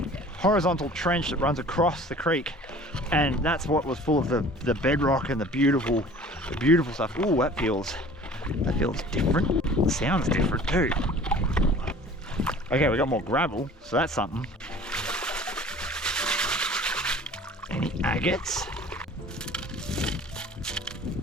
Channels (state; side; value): normal; both; correlation 0.46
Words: Horizontal trench that runs across the creek, and that's what was full of the bedrock and the beautiful stuff. Ooh, that feels different. It sounds different too. Okay, we got more gravel, so that's something. Any agates?